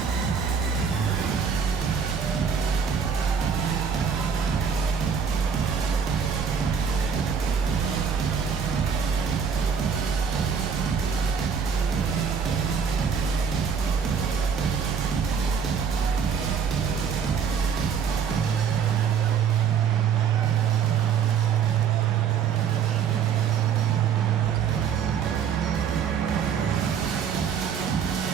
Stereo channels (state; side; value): quieter; left; 6.9 dB